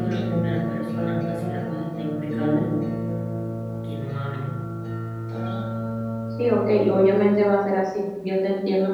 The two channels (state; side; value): identical; both; correlation 1.00